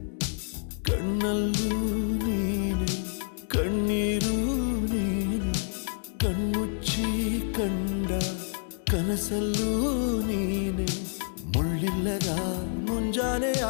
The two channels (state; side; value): silent; right; digital silence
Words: ಕಣ್ಣಲ್ಲೂ ನೀನೆ ಕಣ್ಣೀರು ನೀನೆ ಕಣ್ಮುಚ್ಚಿ ಕಂಡ ಕನಸಲ್ಲೂ ನೀನೆ ಮುಳ್ಳಿಲ್ಲದ ಮುಂಜಾನೆಯ